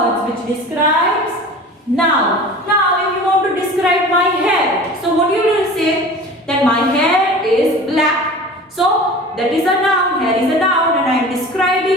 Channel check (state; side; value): normal; both; correlation 0.38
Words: which describes noun. Now if you want to describe my hair, so what you will say? That my hair is black. So that is a noun. Hair is a noun and I am